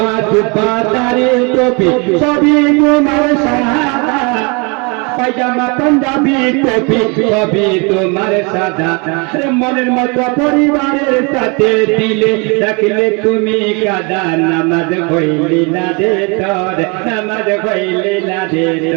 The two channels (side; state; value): left; quieter; 31.2 dB